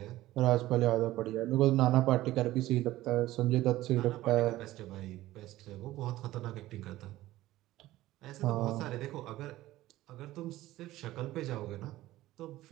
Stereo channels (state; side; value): quieter; left; 16.1 dB